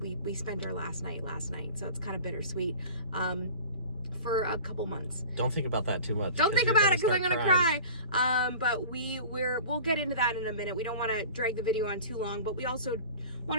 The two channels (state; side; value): inverted; both; correlation -0.39